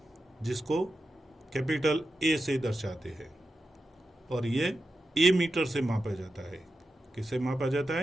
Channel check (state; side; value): normal; both; correlation 0.90